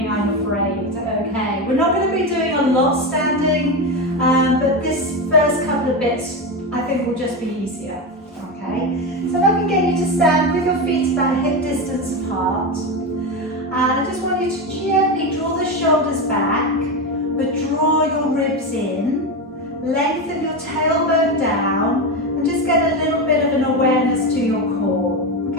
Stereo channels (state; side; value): normal; both; correlation 0.16